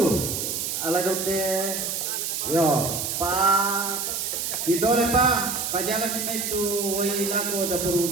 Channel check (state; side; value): noise; right; hiss, 2 dB below the sound